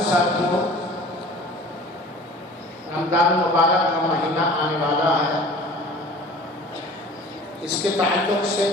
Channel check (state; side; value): normal; both; correlation 0.44